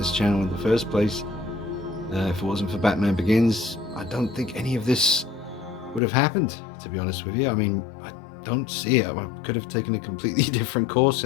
channel in the first place. If it wasn't for Batman Begins, I don't think any of this would have happened, to be honest with you. I mean, I don't see it. I could have taken a completely different course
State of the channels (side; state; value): right; drops out; at 6.0 s